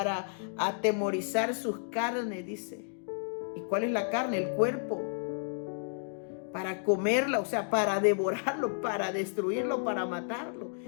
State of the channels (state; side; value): silent; right; digital silence